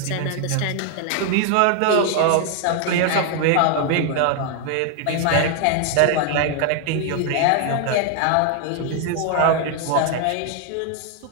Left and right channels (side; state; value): both; different; correlation 0.00